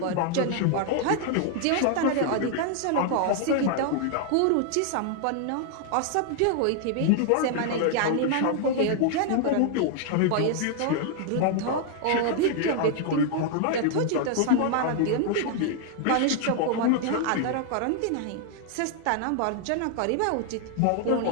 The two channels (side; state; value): both; different; correlation 0.00